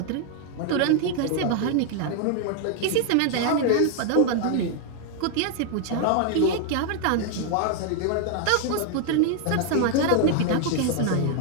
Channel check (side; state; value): both; different; correlation 0.00